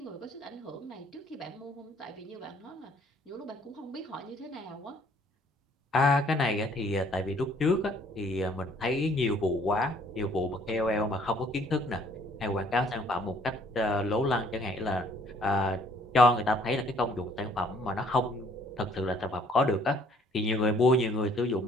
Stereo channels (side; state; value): both; normal; correlation 0.60